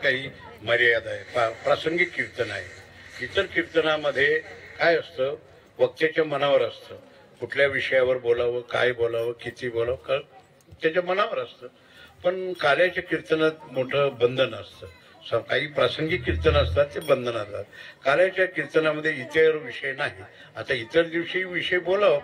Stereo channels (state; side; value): identical; both; correlation 1.00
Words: मर्यादा आहे, प्रासंगिक कीर्तन आहे. इतर कीर्तनामध्ये काय असतं, वक्त्याच्या मनावर असतं, कुठल्या विषयावर बोलावं, काय बोलावं, किती बोलावं, त्याच्या मनावर असतं. पण कार्याच्या कीर्तनात मोठं बंधन असतं. काही प्रासंगिक कीर्तन असतात ते बंधन असतात. कार्याच्या कीर्तनामध्ये इतर विषय नाही. आता इतर दिवशी विषय बोलावं,